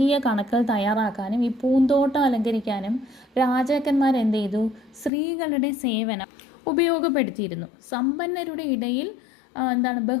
കണക്കുകൾ തയ്യാറാക്കാനും ഈ പൂന്തോട്ടം അലങ്കരിക്കാനും രാജാക്കന്മാർ എന്ത് ചെയ്തു? സ്ത്രീകളുടെ സേവനം ഉപയോഗപ്പെടുത്തിയിരുന്നു. സമ്പന്നരുടെ ഇടയിൽ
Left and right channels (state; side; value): drops out; right; at 5.1 s